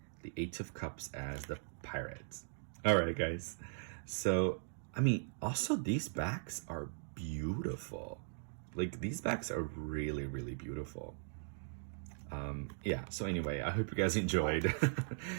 the Eight of Cups as the Pirates. All right, guys. So, I mean, also these backs are beautiful. Like, these bags are really, really beautiful. Yeah, so anyway, I hope you guys enjoyed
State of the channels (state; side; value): silent; left; digital silence